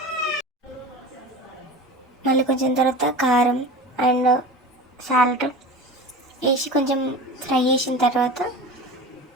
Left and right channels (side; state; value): both; normal; correlation 0.33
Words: మళ్ళీ కొంచెం తర్వాత కారం అండ్ సాల్ట్ వేసి కొంచెం ఫ్రై చేసిన తర్వాత